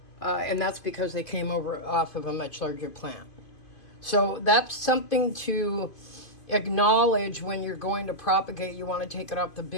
And that's because they came over off of a much larger plant. So that's something to acknowledge when you're going to propagate. You want to take it off the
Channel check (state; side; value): late; right; 2.5 ms